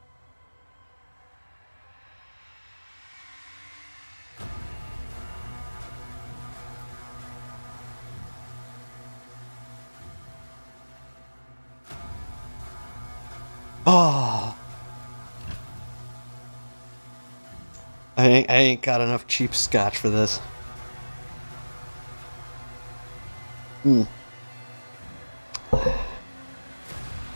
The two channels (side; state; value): both; inverted; correlation -1.00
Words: Oh. I ain't got enough cheap scotch for this. Hmm.